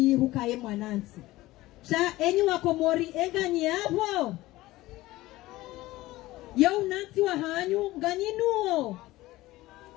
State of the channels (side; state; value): right; quieter; 17.8 dB